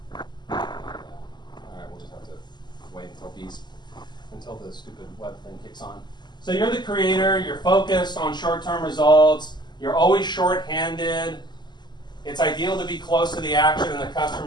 All right, we'll just have to wait until the stupid web thing kicks on. So you're the creator, you're focused on short-term results, you're always short-handed. It's ideal to be close to the action and the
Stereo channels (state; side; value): late; right; 0.21 ms